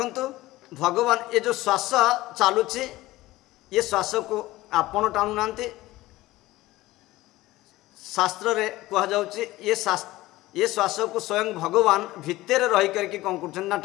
भगवान ये जो श्वास चलुची ये श्वास को आपण टाणु नांती। शास्त्र रे कहा जाउची ये श्वास को स्वयं भगवान भितर रही करके कौन कर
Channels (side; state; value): right; quieter; 17.7 dB